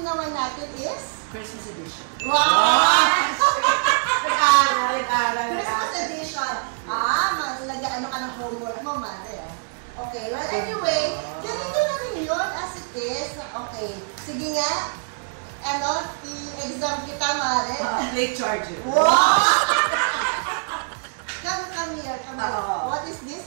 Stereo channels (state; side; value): silent; left; digital silence